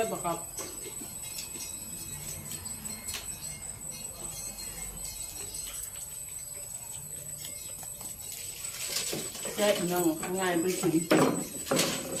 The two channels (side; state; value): both; identical; correlation 1.00